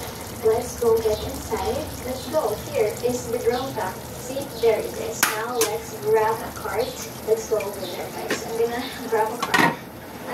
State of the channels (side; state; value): both; identical; correlation 1.00